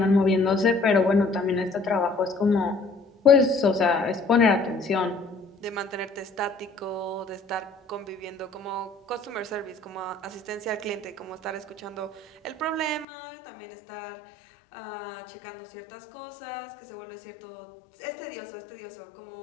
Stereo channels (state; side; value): drops out; right; at 13.1 s